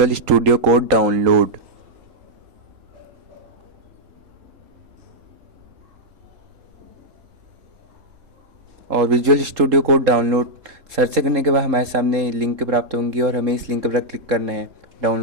स्टूडियो कोड डाउनलोड। और visual studio code download search करने के बाद हमारे सामने लिंक प्राप्त होंगी और हमें इस लिंक पर क्लिक करना है,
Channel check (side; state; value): left; late; 3.8 ms